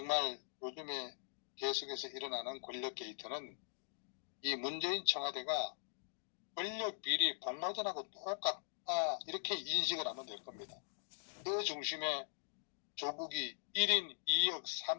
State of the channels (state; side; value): silent; right; digital silence